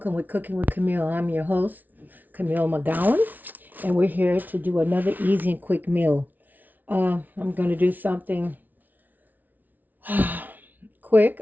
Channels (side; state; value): left; late; 0.081 ms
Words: with Cooking with Camille. I'm your host, Camille McGowan, and we're here to do another easy and quick meal. I'm going to do something quick.